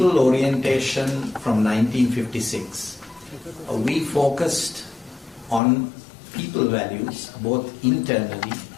orientation from 1956, we focused on people values both internally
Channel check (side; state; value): right; drops out; at 5.6 s